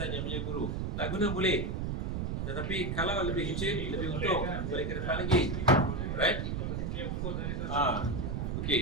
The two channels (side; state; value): right; noise; rumble, 1 dB below the sound